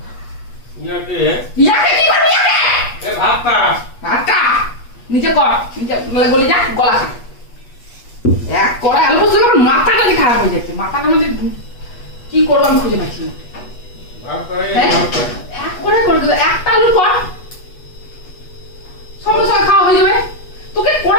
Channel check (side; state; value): right; late; 8.2 ms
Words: ইয়াকে কি করবি? ভাতটা নিচে কর, নিচে গলে যা, গলা খা। এক কড়াই আলু পোস্ত করে মাথাটা খারাপ হয়ে যাচ্ছে। মাথাটা মানে কি করবো আমি খুঁজে পাচ্ছি না। এক করে একটা আলু কর,